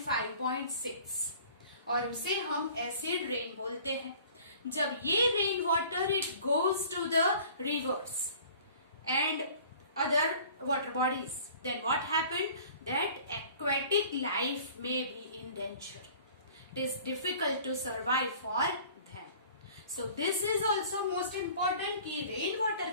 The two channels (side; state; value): both; inverted; correlation -0.48